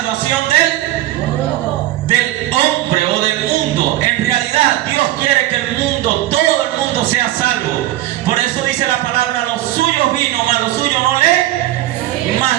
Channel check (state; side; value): quieter; left; 15.0 dB